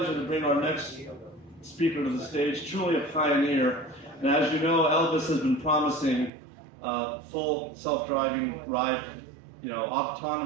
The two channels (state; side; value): drops out; left; at 6.3 s